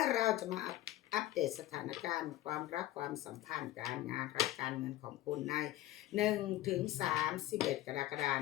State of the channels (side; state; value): right; quieter; 15.2 dB